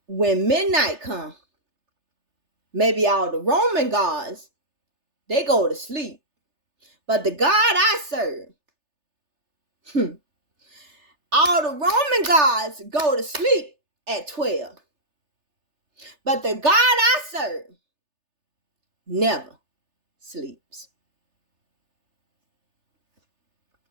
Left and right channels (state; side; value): late; left; 3.3 ms